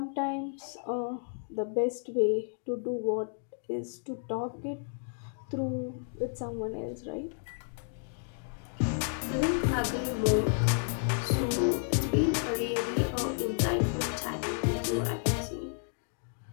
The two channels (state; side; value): silent; right; digital silence